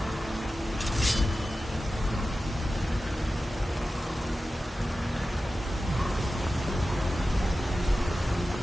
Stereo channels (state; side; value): normal; both; correlation 0.94